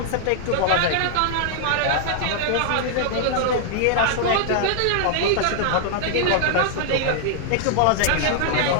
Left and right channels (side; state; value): both; different; correlation -0.01